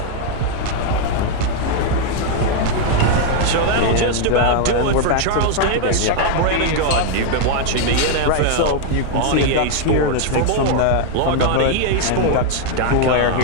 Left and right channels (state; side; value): different; both; correlation 0.00